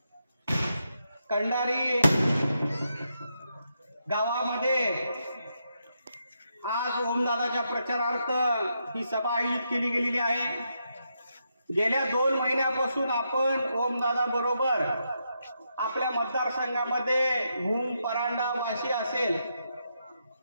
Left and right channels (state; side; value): inverted; both; correlation -0.82